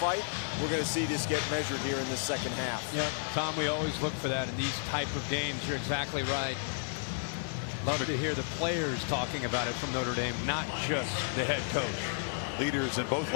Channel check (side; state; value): right; silent; digital silence